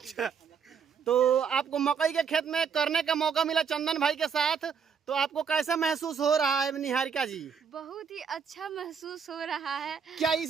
तो आपको मकई के खेत में करने का मौका मिला चंदन भाई के साथ, तो आपको कैसा महसूस हो रहा है निहारिका जी? बहुत ही अच्छा महसूस हो रहा है। क्या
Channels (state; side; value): quieter; left; 6.6 dB